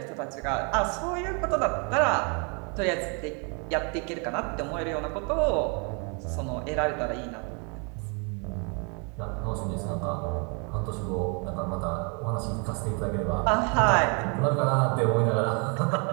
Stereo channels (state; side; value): quieter; left; 35.3 dB